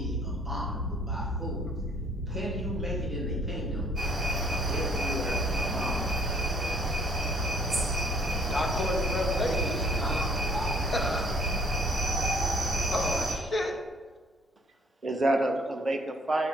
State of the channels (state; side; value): normal; both; correlation 0.60